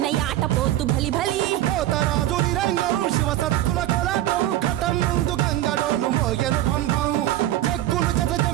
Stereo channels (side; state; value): left; quieter; 14.0 dB